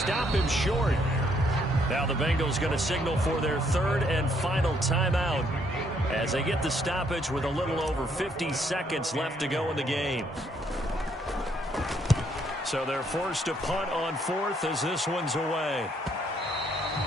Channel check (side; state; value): both; normal; correlation 0.70